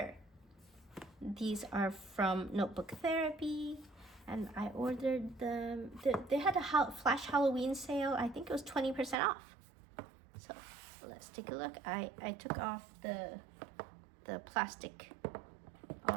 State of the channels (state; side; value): drops out; left; at 9.2 s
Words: These are from Notebook Therapy and I ordered them. They had a flash Halloween sale. I think it was 20% off. So let's take a look. I took off the plastic